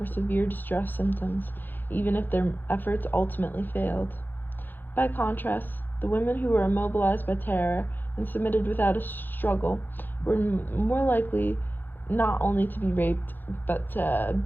severe distress symptoms, even if their efforts ultimately failed. By contrast, the women who were immobilized by terror and submitted without a struggle were more likely not only to be raped, but to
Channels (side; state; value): right; late; 0.089 ms